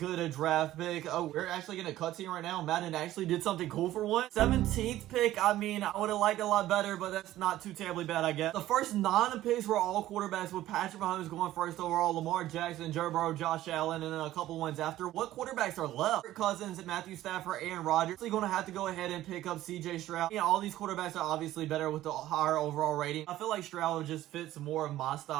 draft pick. Oh, we're actually getting a cutscene right now. Madden actually did something cool for once. 17th pick, I mean, I would have liked it a lot better, but that's not too terribly bad, I guess. The first 9 picks were all quarterbacks, with Patrick Mahomes going first overall, Lamar Jackson, Joe Burrow, Josh Allen, and then a couple ones after. What quarterbacks are left? Kirk Cousins, Matthew Stafford, Aaron Rodgers. So you're going to have to go ahead and pick up CJ Stroud. Yeah, all these quarterbacks are obviously better with the higher overall rating. I feel like Stroud just fits more of my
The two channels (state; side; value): quieter; left; 14.5 dB